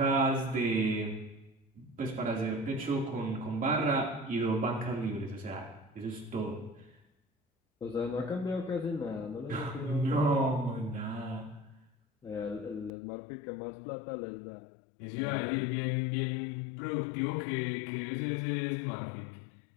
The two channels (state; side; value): drops out; right; at 12.9 s